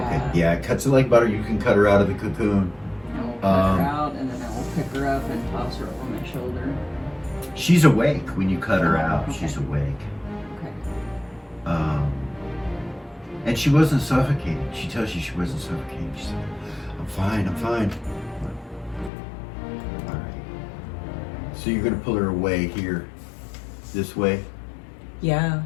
Okay. Yeah, it cuts it like butter. You can cut her out of the cocoon. I will cut her out and then I will pick her up and toss her over my shoulder. She's awake when you cut her Oh, out. okay. She's awake. Okay. And she wasn't suffocating. She tells you she wasn't suffocating. She's like, I'm fine, I'm fine. All right. So you're gonna pull her away here, this way, Yeah,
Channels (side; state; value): right; drops out; at 19.1 s